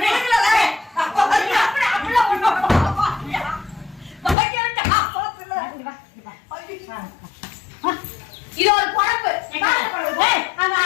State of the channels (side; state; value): right; drops out; at 4.4 s